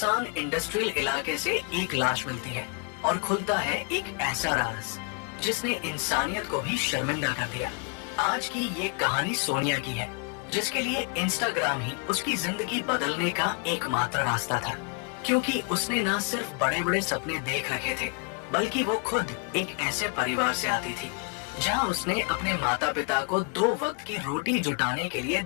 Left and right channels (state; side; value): quieter; right; 35.6 dB